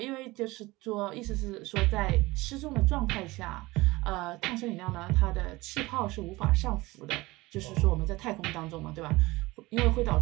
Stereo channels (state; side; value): quieter; left; 20.8 dB